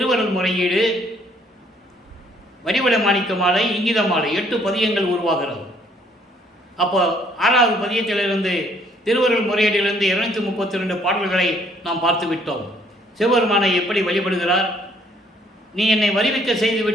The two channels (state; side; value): normal; both; correlation 0.64